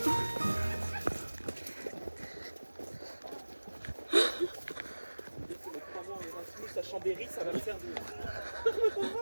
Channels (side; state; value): both; inverted; correlation -1.00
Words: À Chambéry, ça va me servir.